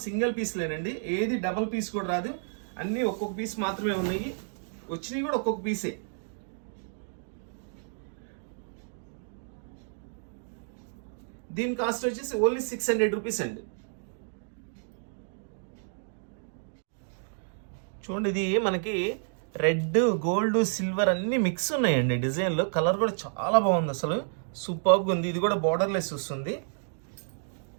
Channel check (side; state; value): left; silent; digital silence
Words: సింగిల్ పీస్లేనండి. ఏది డబుల్ పీస్ కూడా రాదు. అన్నీ ఒక్కొక్క పీస్ మాత్రమే ఉన్నాయి. వచ్చినవి కూడా ఒక్కొక్క పీసే. దీని కాస్ట్ వచ్చేసి ఓన్లీ 600 రూపీస్ అండి. చూడండి, ఇది మనకి రెడ్, గోల్డ్, సిల్వర్ అన్ని మిక్స్ ఉన్నాయండి డిజైన్లో. కలర్ కూడా చాలా బాగుంది అసలు, సూపర్గా ఉంది. ఇది కూడా బార్డర్లెస్ వస్తుంది.